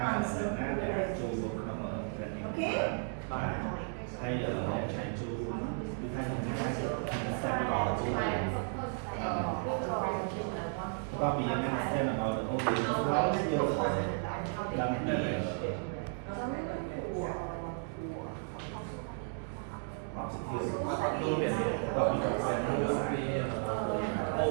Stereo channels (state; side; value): silent; left; 55 dB below the other